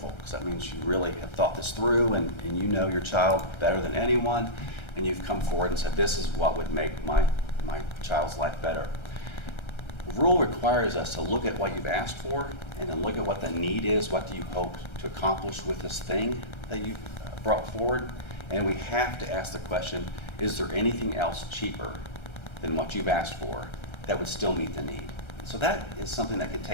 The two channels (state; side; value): late; right; 1.3 ms